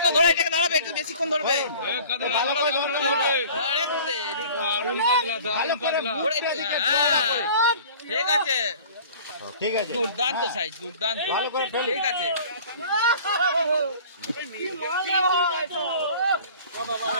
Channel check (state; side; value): inverted; both; correlation -0.45